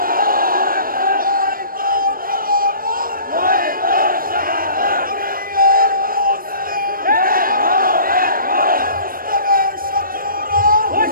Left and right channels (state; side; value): late; left; 0.41 ms